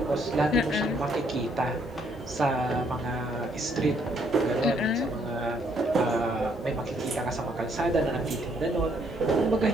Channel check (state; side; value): normal; both; correlation 0.69